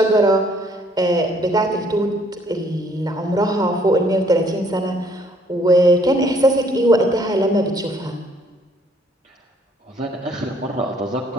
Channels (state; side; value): normal; both; correlation 0.63